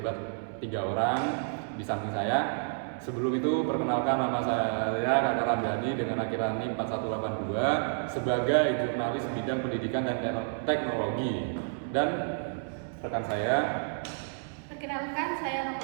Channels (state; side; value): silent; left; 58 dB below the other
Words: 3 orang di samping saya. Sebelum itu perkenalkan, nama saya Kakak Ramdhani dengan akhiran NIM 4182 sebagai jurnalis bidang pendidikan dan teknologi. Dan rekan saya, perkenalkan, saya Nova